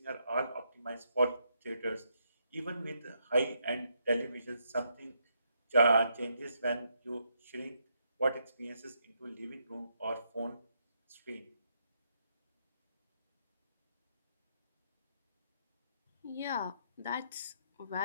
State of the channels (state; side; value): inverted; both; correlation -0.77